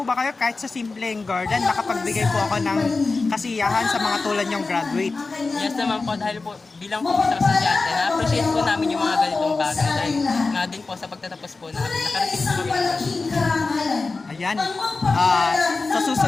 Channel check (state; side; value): quieter; right; 3.8 dB